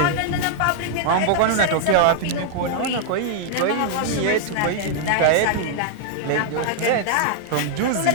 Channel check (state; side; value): different; both; correlation -0.01